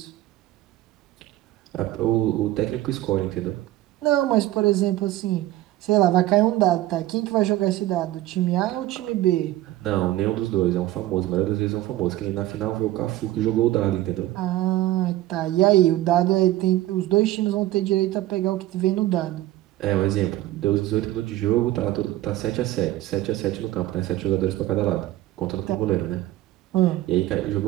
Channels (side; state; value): left; quieter; 15.4 dB